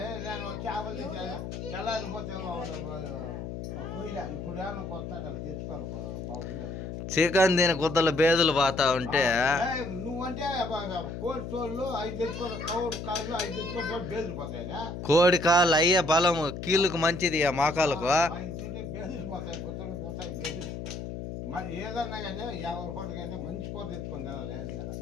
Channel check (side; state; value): left; noise; hum, 7 dB below the sound